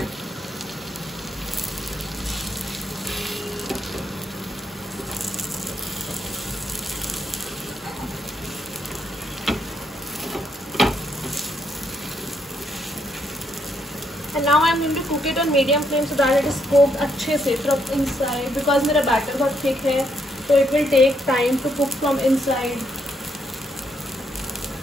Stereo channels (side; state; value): both; normal; correlation 0.75